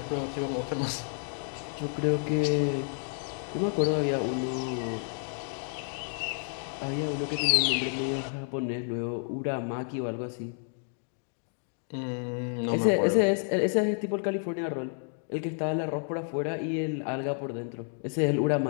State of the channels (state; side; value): silent; right; 58 dB below the other